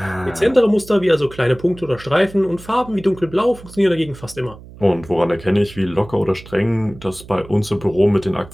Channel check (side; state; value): right; noise; hum, 18 dB below the sound